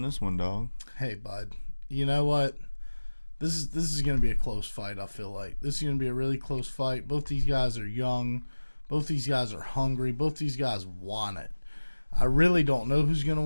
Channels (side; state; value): both; inverted; correlation -1.00